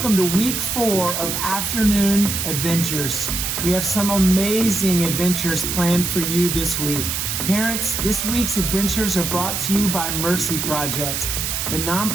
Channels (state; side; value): noise; right; hiss, 2 dB below the sound